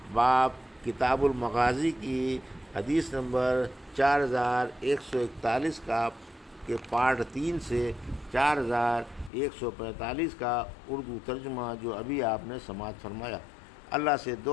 باب کتاب المغازی کی حدیث نمبر 4141 کا کے پارٹ 3 سے 4145 کا اردو ترجمہ جو ابھی آپ نے سماعت فرمایا۔ اللہ سے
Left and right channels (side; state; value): right; drops out; at 9.3 s